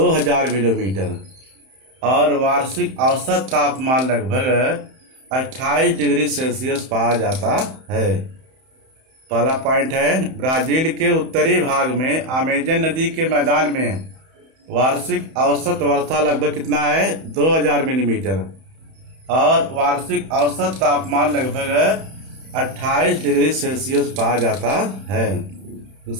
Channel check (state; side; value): late; left; 31 ms